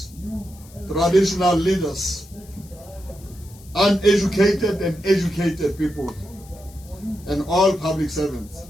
traditional leaders, uneducated and educated people, and all public servants,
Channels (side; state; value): left; noise; hiss, 23 dB below the sound